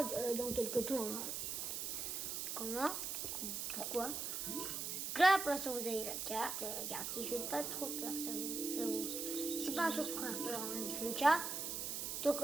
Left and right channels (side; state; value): right; noise; hiss, 3 dB below the sound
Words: dans quelques temps. Hein. Comment? Pourquoi? Donc là, pour l'instant, vous avez la carte. La carte qui fait pas trop peur, ça j'avoue. C'est pas un truc pour faire peur, en tout cas. Donc